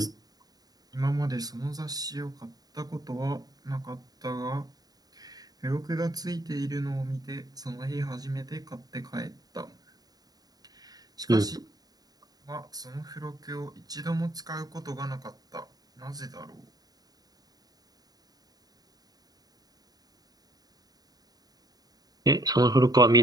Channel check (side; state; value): left; late; 0.18 ms